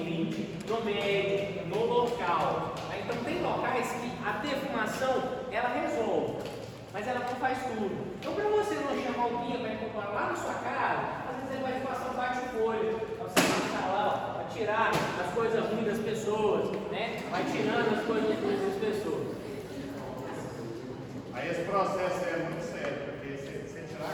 no médio, no local. Então tem locais que a defumação ela resolve, mas ela não faz tudo. Então para você não chamar o guia para incorporar lá na sua casa, às vezes ele vai te passar um bate-folha, para você passar lá, para tirar as coisas ruins das pessoas, né? Vai tirando as coisas ruins das pessoas. Aí esse processo é muito sério, porque você tirar a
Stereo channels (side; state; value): both; identical; correlation 1.00